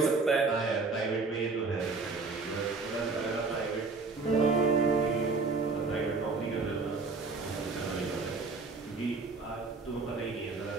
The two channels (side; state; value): left; quieter; 4.0 dB